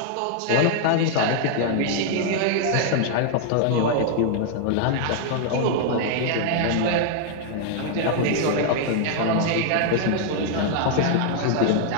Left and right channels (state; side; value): different; both; correlation 0.00